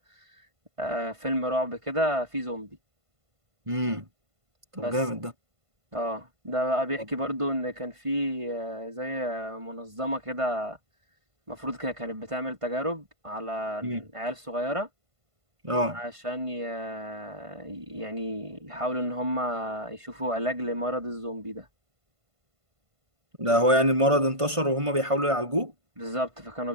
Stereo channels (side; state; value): left; late; 1.5 ms